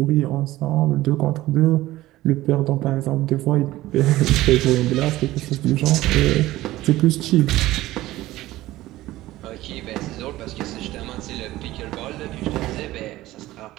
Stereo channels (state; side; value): quieter; left; 16.6 dB